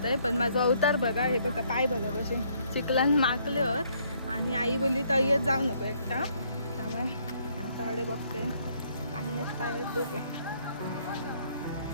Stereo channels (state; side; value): inverted; both; correlation -0.67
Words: आहे पण माझा अवतार बघा हे बघा पाय बघा कसे चिखलान माकल्यावर आणि आई बोलली तय्यत जाऊ नको एकटा त्यामुळे आता त्यांच्याकडे बघते. पाणी येत पाय डोके.